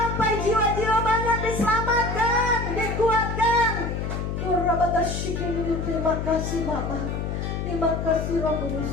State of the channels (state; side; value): noise; left; hum, 3 dB below the sound